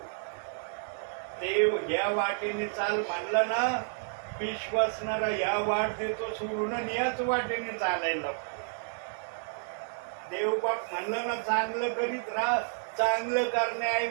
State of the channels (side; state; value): left; silent; digital silence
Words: देव या वाटेने चाल म्हणलं ना, विश्वासणारा या वाट देतो सोडून याच वाटेने चालायला लागतो. देवबाप म्हणलं ना चांगलं करीत राहा, चांगलं